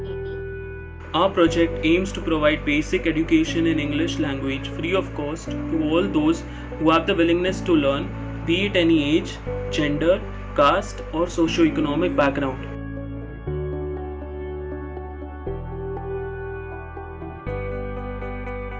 Our project aims to provide basic education in English language free of cost to all those who have the willingness to learn, be it any age, gender, caste, or socio-economic background.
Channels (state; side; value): identical; both; correlation 1.00